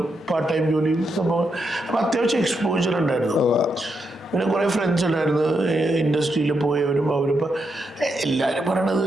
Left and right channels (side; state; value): both; normal; correlation 0.82